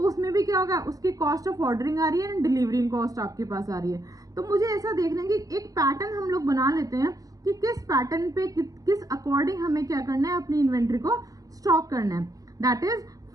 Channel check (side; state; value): left; late; 0.17 ms